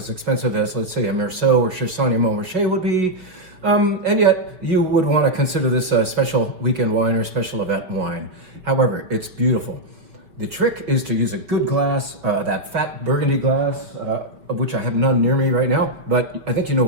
expensive as, let's say, a Meursault or Chassagne-Montrachet would be. And yet, you would want to consider this a special weekend wine or special event wine. However, it's beautiful. The trick is to use a good glass, that fat Burgundy glass, of which I have none near me right now, but I think you know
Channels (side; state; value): left; late; 5.1 ms